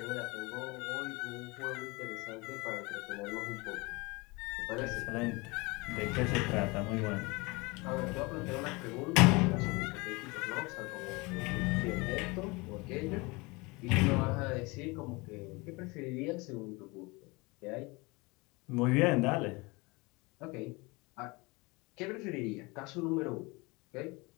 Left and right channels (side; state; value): right; quieter; 25.6 dB